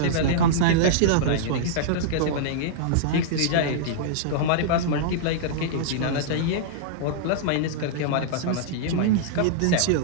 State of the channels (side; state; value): both; different; correlation -0.02